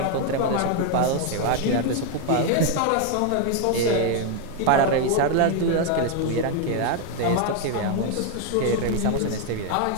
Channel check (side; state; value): both; different; correlation 0.01